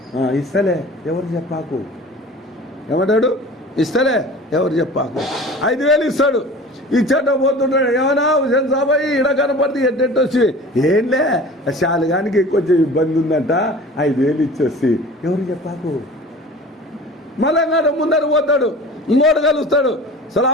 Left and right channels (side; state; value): both; normal; correlation 0.40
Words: ఇస్తలే ఎవరు చెప్పాకు. ఏమంటాడు? ఇస్తలే ఎవరు చెప్పాకు. 5,000 ఇస్తాడు. ఇచ్చేట పోతుంటాడు, ఏమన్నా హుసేన్ సాబాయి ఇడ కనపడితే ఎట్టెట్టొచ్చి, ఏంలే శాలుగానికి కొంచెం ఇబ్బంది ఉందంట, 5,000 ఇచ్చేసి ఎవరు చెప్పాకు. మళ్ళా ముందర పోతాడు, ఇంకోటి కలుస్తాడు,